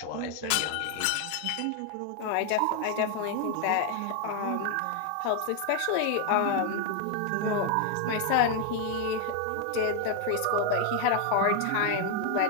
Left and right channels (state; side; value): different; both; correlation 0.00